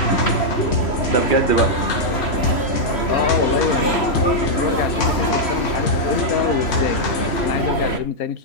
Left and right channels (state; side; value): late; right; 3.0 ms